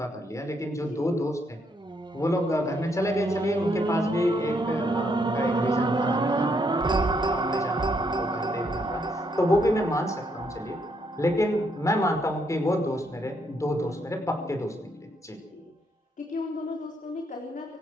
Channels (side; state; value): both; normal; correlation 0.74